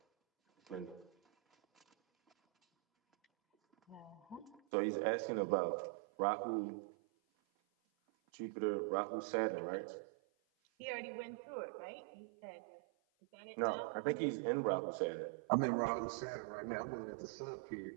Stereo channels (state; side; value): drops out; left; at 4.6 s